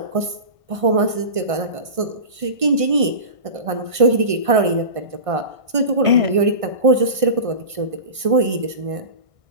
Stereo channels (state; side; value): late; left; 1.6 ms